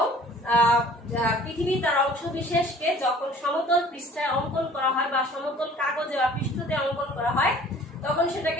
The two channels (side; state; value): both; normal; correlation 0.50